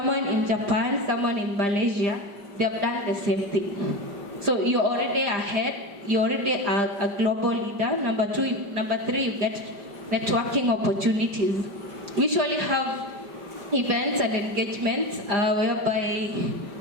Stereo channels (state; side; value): late; left; 4.9 ms